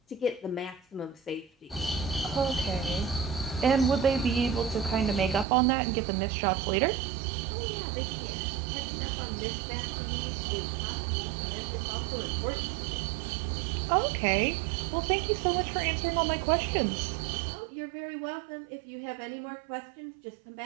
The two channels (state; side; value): drops out; left; at 5.5 s